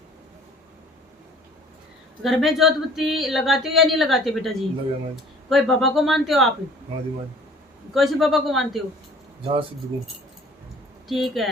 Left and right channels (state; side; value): normal; both; correlation 0.51